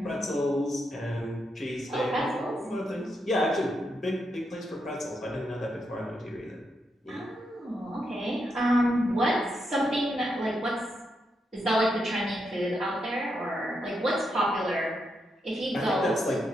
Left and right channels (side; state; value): both; normal; correlation 0.82